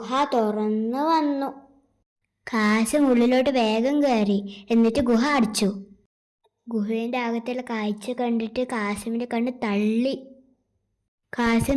തുറന്നു വന്നു. കാസിം ഉള്ളിലോട്ട് വേഗം കയറി. എന്നിട്ട് ഗുഹ അടച്ചു. ഗുഹേൻ്റെ അകത്തുള്ള കാഴ്ച കണ്ടിട്ട് കാസിമിന്റെ കണ്ണ് തള്ളി.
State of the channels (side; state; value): both; identical; correlation 1.00